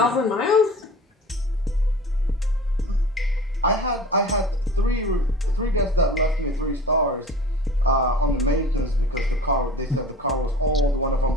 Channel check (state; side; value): normal; both; correlation 0.41